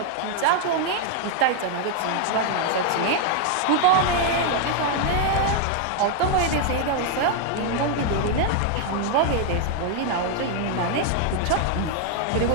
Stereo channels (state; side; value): different; both; correlation 0.00